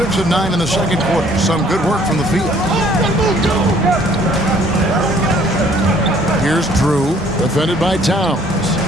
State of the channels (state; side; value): normal; both; correlation 0.59